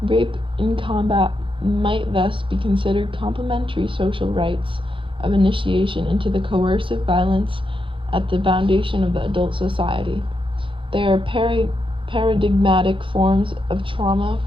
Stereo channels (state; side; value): late; left; 0.25 ms